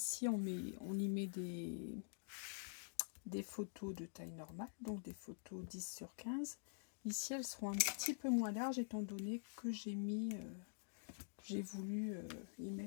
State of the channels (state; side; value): silent; right; digital silence